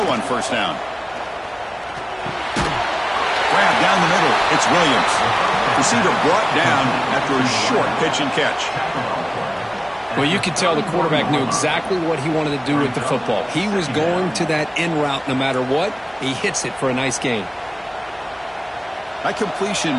on first down. Grab down the middle. It's Williams. Receiver brought down after a short pitch and catch. Well, you could tell the quarterback knew exactly what he wanted to do with the football. He was going to that in route no matter what. He hits it for a nice gain. That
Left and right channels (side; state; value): both; identical; correlation 1.00